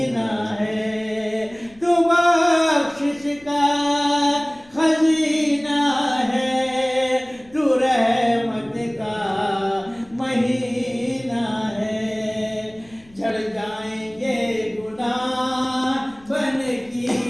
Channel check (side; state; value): left; noise; rumble, 28 dB below the sound